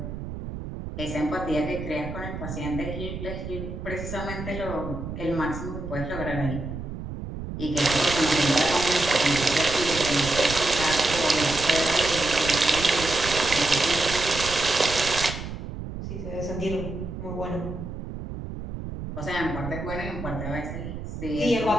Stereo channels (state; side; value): noise; right; rumble, 8 dB below the sound